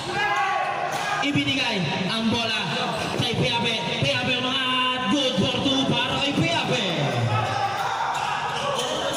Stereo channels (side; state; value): both; identical; correlation 1.00